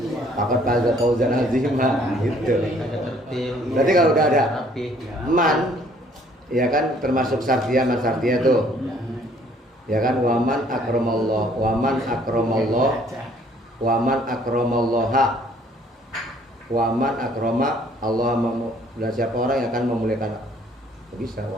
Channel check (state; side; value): normal; both; correlation 0.60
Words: Pakat faza fauzan azima gitu. Berarti kalau udah ada man ya kan termasuk sartia man sartia tuh. Ya kan waman akramallah, waman akramallah, waman akramallaha. Waman akrama Allah dan siapa orang yang akan memuliakan bisa